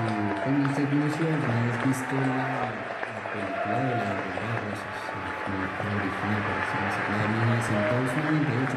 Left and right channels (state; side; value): identical; both; correlation 1.00